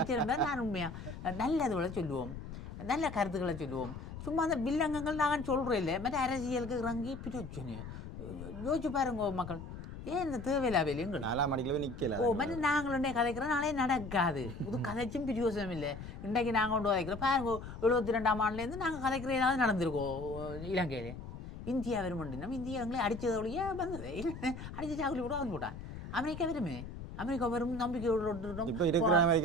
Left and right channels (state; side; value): noise; left; rumble, 10 dB below the sound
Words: நான் உண்மையாக நல்லதுகளை சொல்லுவோம் நல்ல கருத்துக்களை சொல்லுவோம் சும்மா அந்த வில்லங்கங்கள் நாங்கள் சொல்கிறோம் இல்லை மற்ற அரசியலுக்கு இறங்கி பிரச்சனை யோசிச்சு பாருங்க மக்கள் ஏன் இந்த தேவையில்லா வேலையும் 4ஆம் மணிக்குள்ள நிற்கல மற்ற நாங்களுடைய கதைக்கிறோம் நாளே நடக்காது இது கதைச்சும் பிரியோசனம் இல்லை இன்றைக்கு நாங்கள் கொண்டு கதைக்கிறோம் பாருங்க 72ஆம் ஆண்டுலேருந்து நாங்கள் கதைக்கிற ஏதாவது நடந்திருக்கோம் இலங்கையிலே இந்தியா வருமண்டி நம்ம இந்தியா எங்களை அடித்தது ஒழிய வந்தது அடித்து சாக்குலி கூட வந்து போட்டான் அமெரிக்கா வருமே அமெரிக்கா வரும் நம்பிக்கையோடு